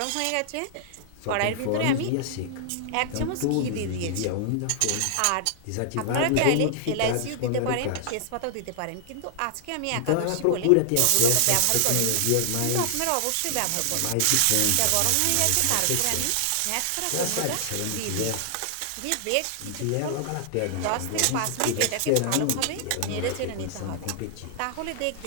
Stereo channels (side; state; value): both; different; correlation -0.01